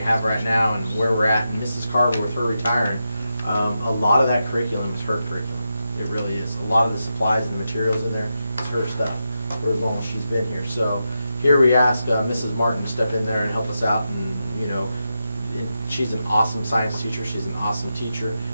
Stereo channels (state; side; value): inverted; both; correlation -0.88